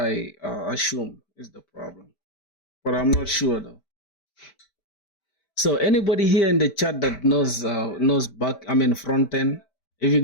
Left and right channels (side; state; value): right; late; 4.5 ms